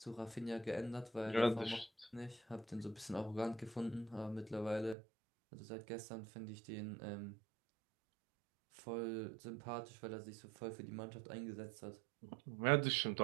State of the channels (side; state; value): left; drops out; at 5.0 s